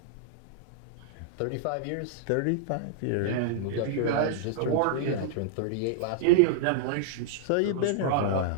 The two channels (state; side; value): different; both; correlation -0.01